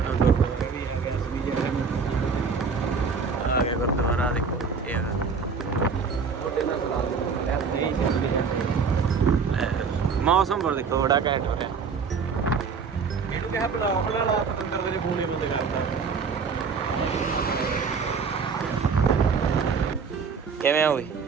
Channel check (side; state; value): left; quieter; 5.5 dB